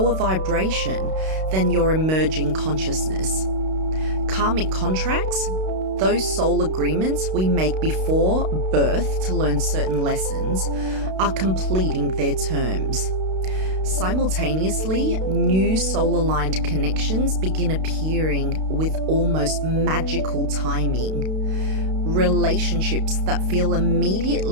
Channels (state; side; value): late; left; 32 ms